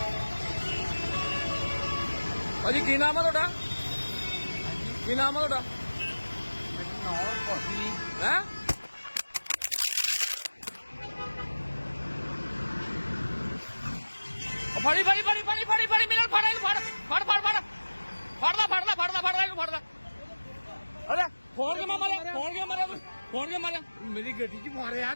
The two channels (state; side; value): inverted; both; correlation -1.00